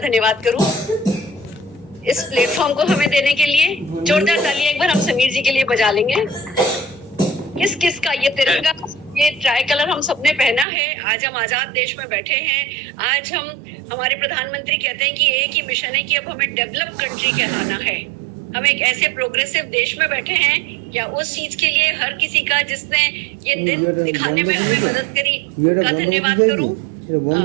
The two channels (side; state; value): left; drops out; at 10.7 s